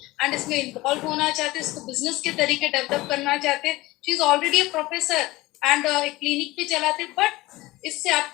एंड इसमें इन्वॉल्व होना चाहते हैं, इसको बिजनेस के तरीके डेवलप करना चाहते हैं। She is already a professor and एक क्लिनिक भी चलाते, बट इससे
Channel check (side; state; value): right; quieter; 19.5 dB